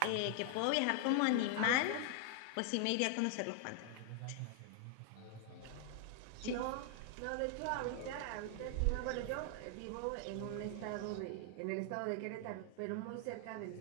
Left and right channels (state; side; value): different; both; correlation 0.00